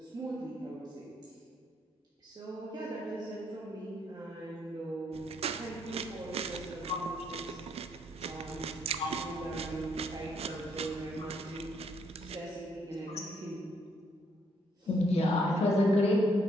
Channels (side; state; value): both; normal; correlation 0.71